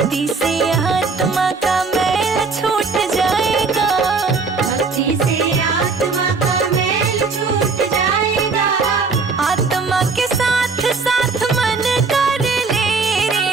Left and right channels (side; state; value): left; quieter; 4.5 dB